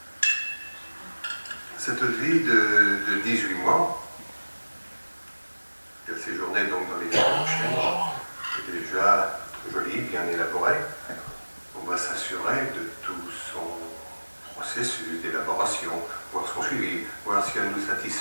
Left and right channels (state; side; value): inverted; both; correlation -1.00